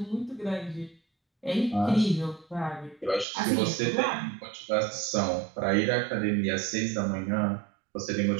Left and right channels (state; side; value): drops out; left; at 3.2 s